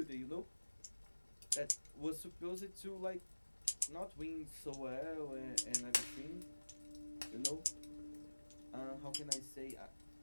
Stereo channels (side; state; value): both; inverted; correlation -1.00